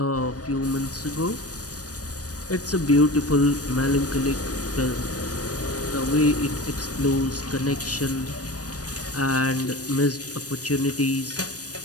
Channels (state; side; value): late; right; 0.68 ms